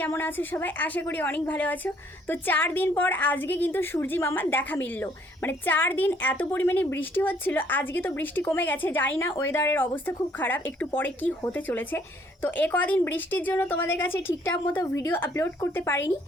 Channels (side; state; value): both; normal; correlation 0.64